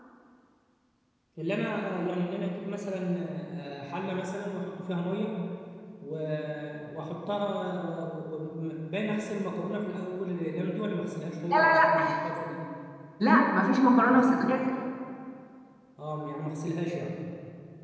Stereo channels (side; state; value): both; identical; correlation 1.00